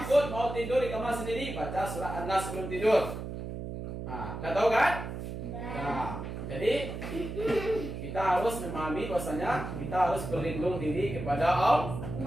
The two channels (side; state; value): right; noise; hum, 7 dB below the sound